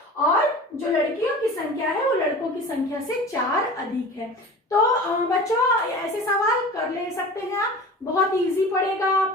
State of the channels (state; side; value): normal; both; correlation 0.37